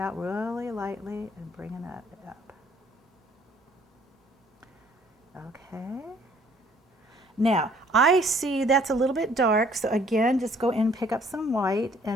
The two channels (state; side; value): normal; both; correlation 0.60